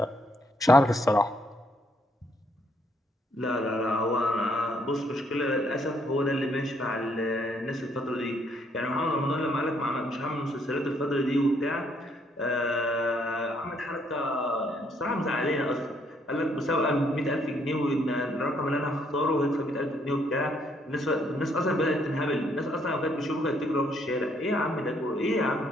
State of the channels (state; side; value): normal; both; correlation 0.70